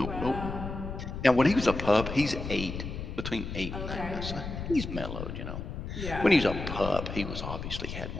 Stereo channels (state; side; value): noise; left; rumble, 6 dB below the sound